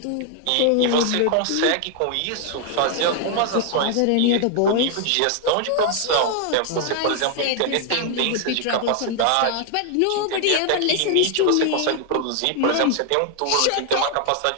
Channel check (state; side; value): different; both; correlation 0.00